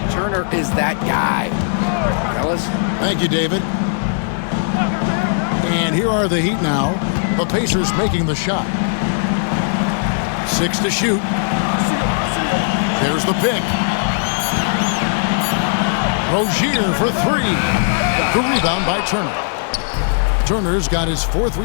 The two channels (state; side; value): silent; right; digital silence